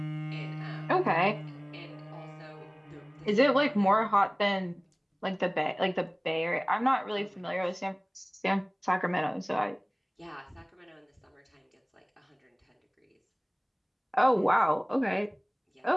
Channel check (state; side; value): identical; both; correlation 1.00